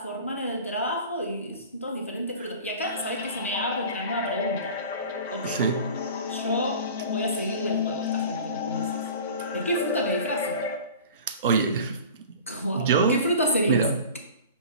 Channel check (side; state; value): both; inverted; correlation -0.40